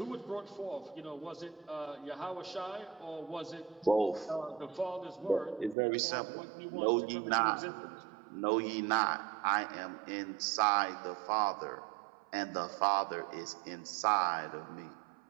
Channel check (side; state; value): left; drops out; at 5.8 s